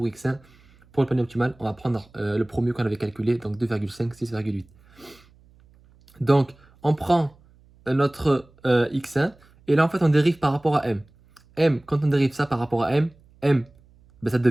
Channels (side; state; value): right; noise; hum, 29 dB below the sound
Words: X1, pour le panier optimal, on va prendre le premier qu'on avait calculé, donc 2,5, 6,8. Donc, on prend notre X1 et là, en fait, on dérive par rapport à M. M, quand on dérive ça par rapport à M, M, ben, ça